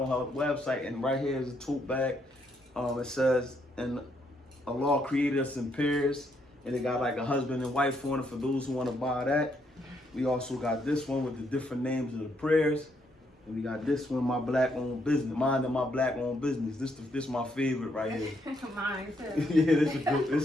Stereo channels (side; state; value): both; normal; correlation 0.74